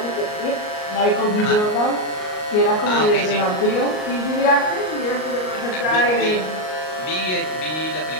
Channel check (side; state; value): right; late; 38 ms